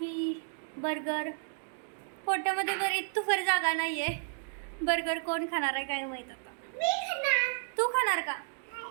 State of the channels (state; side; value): silent; left; digital silence